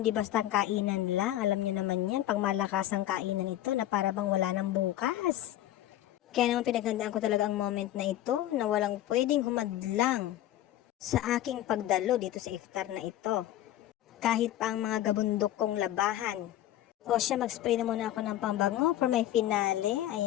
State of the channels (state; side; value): quieter; right; 13.5 dB